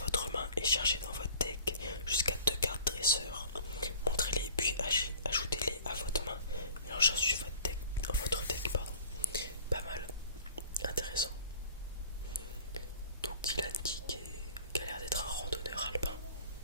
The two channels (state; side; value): inverted; both; correlation -0.46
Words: main et cherchez dans votre deck jusqu'à 2 cartes dresseurs. Montrez-les puis ajoutez-les à votre main. Mélangez ensuite votre deck. Pas mal. Intéressant. Donc Dylan qui a l'air d'être un randonneur alpin.